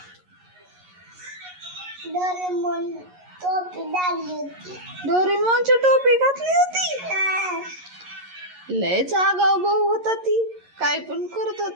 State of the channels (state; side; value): late; left; 11 ms